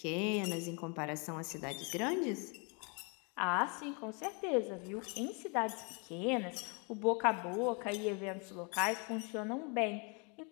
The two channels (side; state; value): right; quieter; 33.8 dB